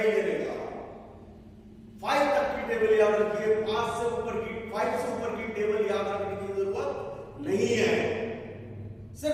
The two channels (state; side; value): identical; both; correlation 1.00